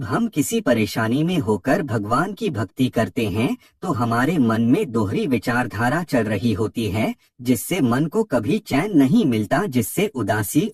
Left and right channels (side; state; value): both; identical; correlation 1.00